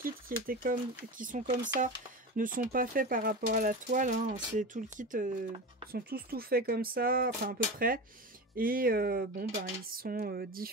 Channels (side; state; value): both; normal; correlation 0.26